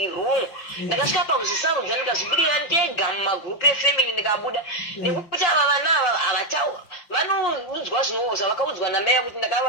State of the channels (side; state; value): right; late; 5.8 ms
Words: wrong ndakasvika pakuzvisarudza ndikazvibudira ndega mumagrupu efamily ndikabuda nekuti ava vana ava vanoudzwa zvinoozva vakaudzwa namai kuti